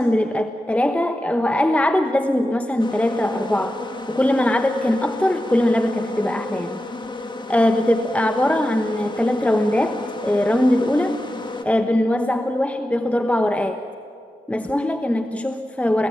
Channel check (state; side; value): normal; both; correlation 0.91